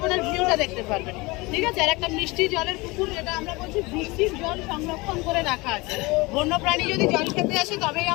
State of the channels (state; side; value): quieter; right; 23.9 dB